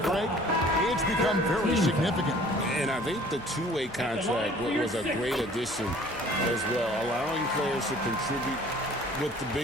Greg, it's become very significant. And I think the two-way contract was a great addition as well, allowing players to contribute with the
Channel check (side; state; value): left; noise; hum, 23 dB below the sound